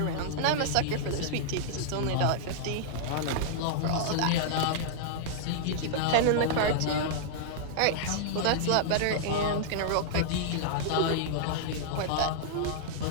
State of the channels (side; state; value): both; different; correlation -0.01